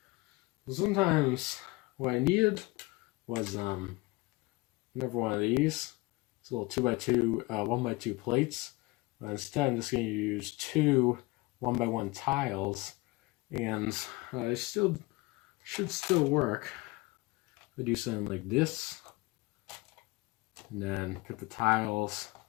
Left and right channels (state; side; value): quieter; right; 23.5 dB